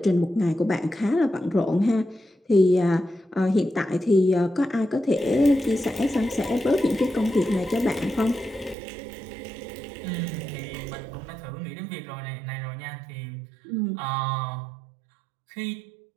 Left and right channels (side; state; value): left; drops out; at 8.8 s